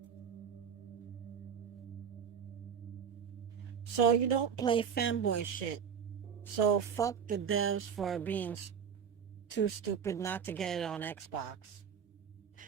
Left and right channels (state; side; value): quieter; left; 7.4 dB